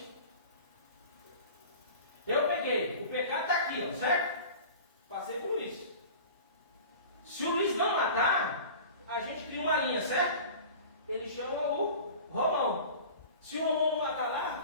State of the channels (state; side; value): inverted; both; correlation -0.39